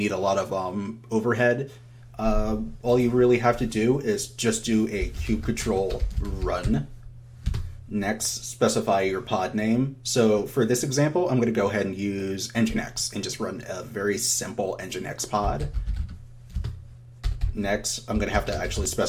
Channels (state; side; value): identical; both; correlation 1.00